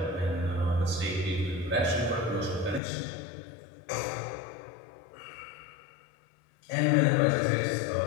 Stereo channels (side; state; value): right; drops out; at 2.8 s